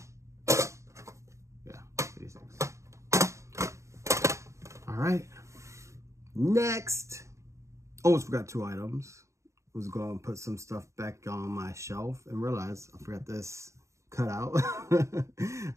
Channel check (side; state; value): left; late; 0.14 ms